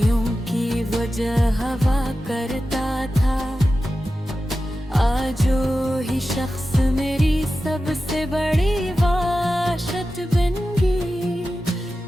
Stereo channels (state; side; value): normal; both; correlation 0.93